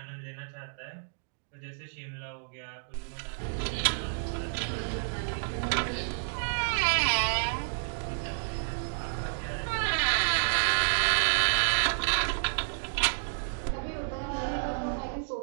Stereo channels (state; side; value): silent; left; digital silence